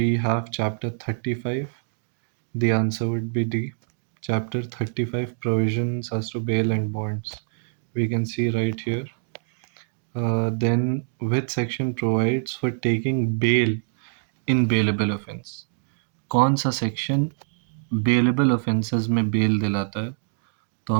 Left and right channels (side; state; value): left; silent; 62 dB below the other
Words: have chapter 35. The answer would be D. Chapter 35 provisions as to bail and bonds. We can see right here. Then which section provides for taking bail in bailable offense? कौन सा section bailable offences में bell दिलाता है? तो